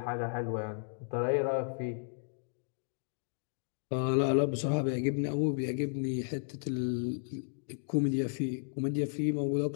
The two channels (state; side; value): silent; right; digital silence